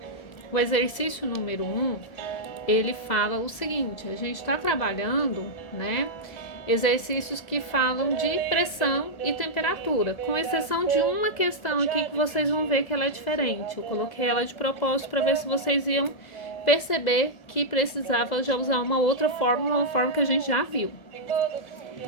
O exercício número 1, ele fala o seguinte: a gente está trabalhando, né? Exercícios que falam de pressão e temperatura, com exceção de uma questão aqui que vocês vão ver que ela é diferente. Eu coloquei ela de propósito para ver se vocês iam perceber que precisava já usar uma outra fórmula, uma forma que a gente já viu.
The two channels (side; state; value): right; late; 1.8 ms